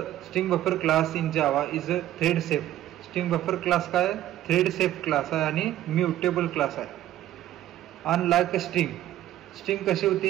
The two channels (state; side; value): quieter; left; 13.4 dB